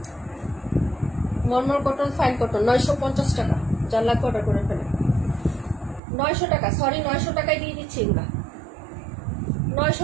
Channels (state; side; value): drops out; left; at 6.0 s